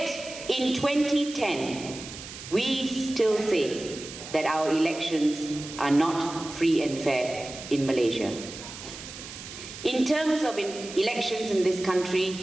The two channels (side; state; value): right; noise; hiss, 12 dB below the sound